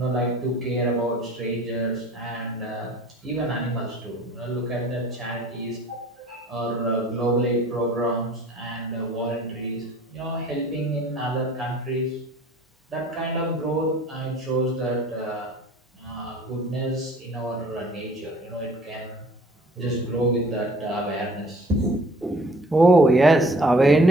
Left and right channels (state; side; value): normal; both; correlation 0.51